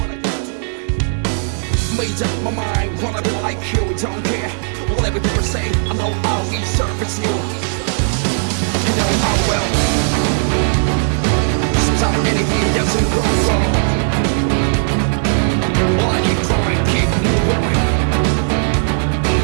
Made up my mind, wanna be like you, don't care whatever people say. I know I'll be service you. I know I will. Sometimes anything doesn't go wrong. Well, I keep trying, keep moving.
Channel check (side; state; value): left; silent; 66 dB below the other